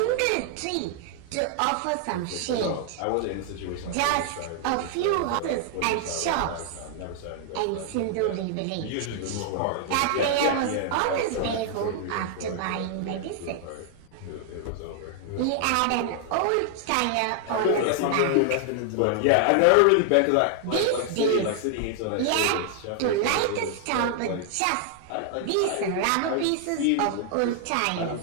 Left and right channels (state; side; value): different; both; correlation 0.00